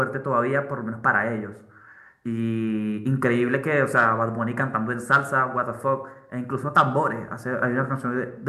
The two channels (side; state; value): both; identical; correlation 1.00